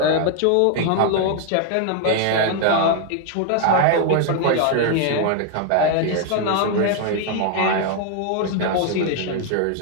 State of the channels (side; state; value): both; different; correlation 0.00